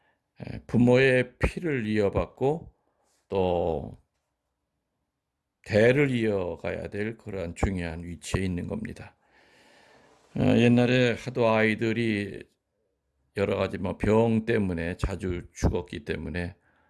부모의 피를 이어받고 또 대를 이어가야 될 그러한 중요한 위치에 있는 겁니다. 옛날에 하도 아이들이 여러 가지 병 때문에 자주 죽었기 때문에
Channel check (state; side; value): identical; both; correlation 1.00